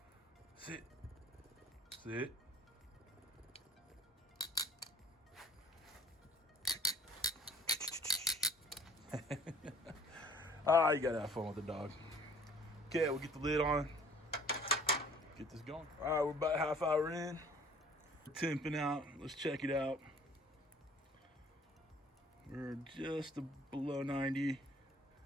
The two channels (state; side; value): normal; both; correlation 0.52